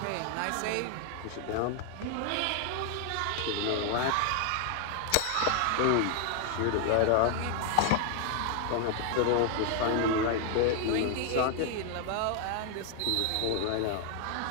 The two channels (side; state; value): both; different; correlation 0.00